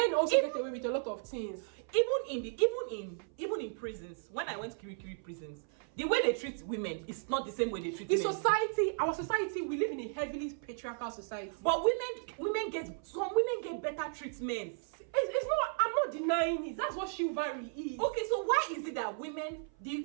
also get away with a lot of things. Even in prisons, when I went to Kirikiri prisons, the way they treat women is not the same way they treat men. Our society, we live in a heavily patriarchal society. But women get better treatments. It's not. I'm not denying it. That's what chivalry is. Okay, so why is it that women, the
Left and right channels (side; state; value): left; silent; 55 dB below the other